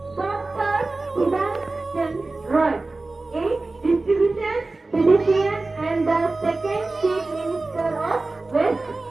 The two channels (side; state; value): left; quieter; 3.3 dB